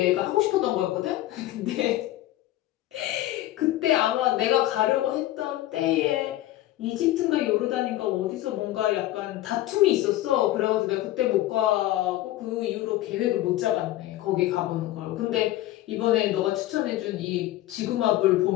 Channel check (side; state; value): right; quieter; 15.3 dB